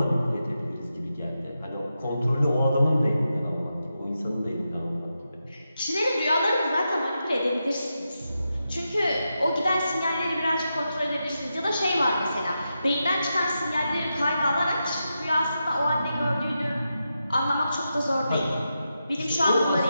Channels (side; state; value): both; inverted; correlation -0.88